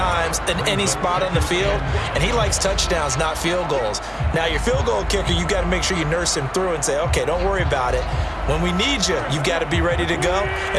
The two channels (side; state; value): both; identical; correlation 1.00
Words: in any spot on the field, and he likes touchdowns, not field goals. Now, your field goal kicker, you got to make sure you nurse him through and say, okay, don't worry about it. When we need you, you've got to be ready to go.